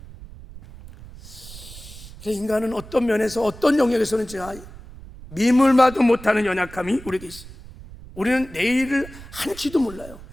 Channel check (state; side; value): noise; right; rumble, 17 dB below the sound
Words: 그래서 인간은 어떤 면에서 어떤 영역에서는 제가 미물마도 못하는 연약함이 우리에게 있어요. 우리는 내일을 한치도 몰라요.